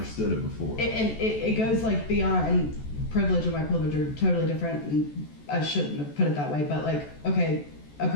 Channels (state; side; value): late; right; 14 ms